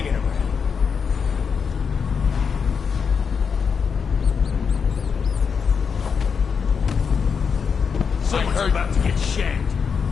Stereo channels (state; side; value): quieter; right; 6.1 dB